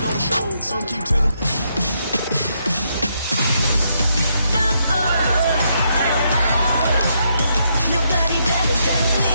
don't show. Some keep telling me. Nobody better than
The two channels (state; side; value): inverted; both; correlation -0.77